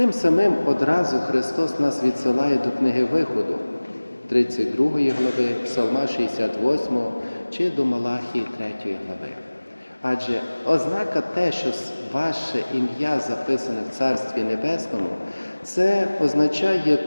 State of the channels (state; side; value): inverted; both; correlation -1.00